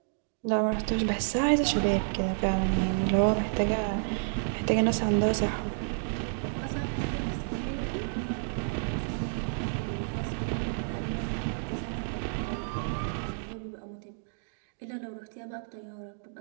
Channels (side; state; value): left; silent; digital silence